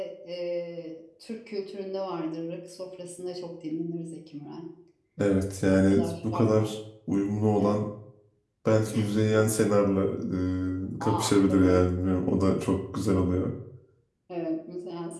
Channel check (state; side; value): identical; both; correlation 1.00